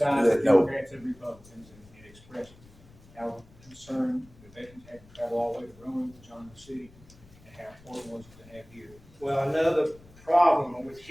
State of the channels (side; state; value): left; noise; rumble, 24 dB below the sound